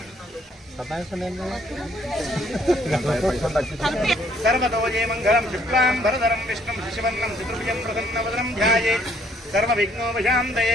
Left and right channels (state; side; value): normal; both; correlation 0.65